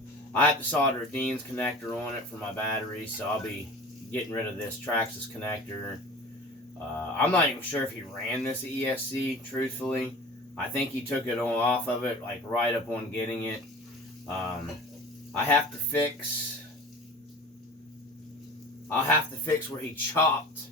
have to solder a Dean's connector on it for my battery, so I'll be getting rid of this Traxxas connector. I'm not even sure if he ran this ESC, truthfully. I think he took it off of it, like right up on getting it. I'll have to fix where he chopped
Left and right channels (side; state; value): both; normal; correlation 0.39